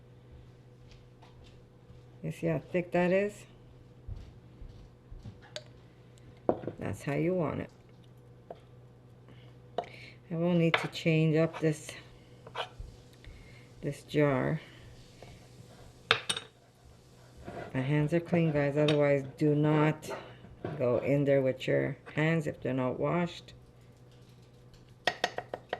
You see how thick that is? That's how you want it. I will need to change up this jar. My hands are clean, guys. Otherwise, do not go in there with your hands if they're not washed.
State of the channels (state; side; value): identical; both; correlation 1.00